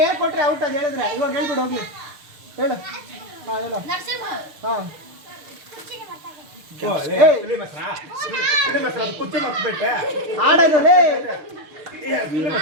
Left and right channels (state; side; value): late; left; 6.6 ms